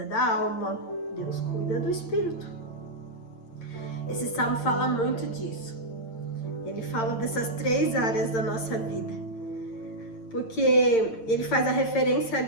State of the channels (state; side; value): late; right; 8.8 ms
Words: da alma, Deus cuida do espírito. Esse salmo fala muito disso. Ele fala dessas 3 áreas da nossa vida, porque ele faz a referência